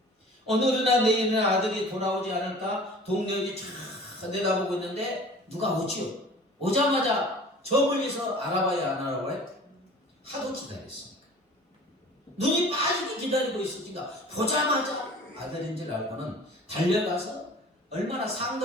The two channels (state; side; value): normal; both; correlation 0.44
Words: 오늘이나 내일이나 아들이 돌아오지 않을까 동료들이 쫙 내다보고 있는데 누가 오지요. 오자마자 저 멀리서 알아봐야 안 알아봐요? 하도 기다렸으니까. 눈이 빠지게 기다리고 있으니까 보자마자 아들인 줄 알고는 달려가서 얼마나